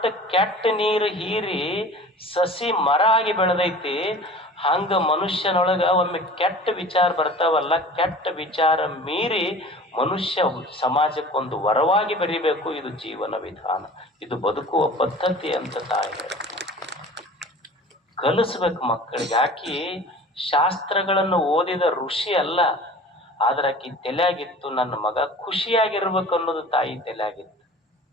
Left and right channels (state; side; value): normal; both; correlation 0.42